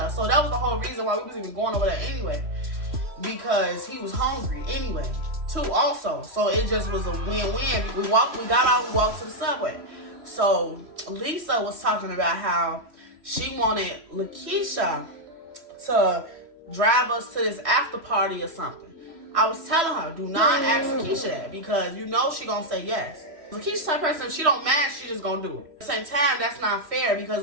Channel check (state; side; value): late; left; 3.0 ms